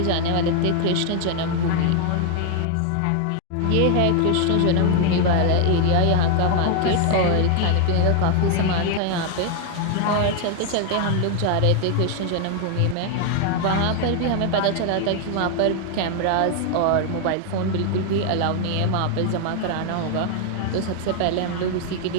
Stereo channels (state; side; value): different; both; correlation 0.00